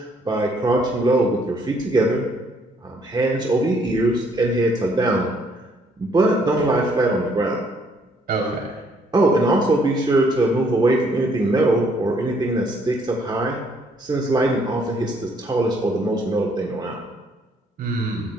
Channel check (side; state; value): both; normal; correlation 0.67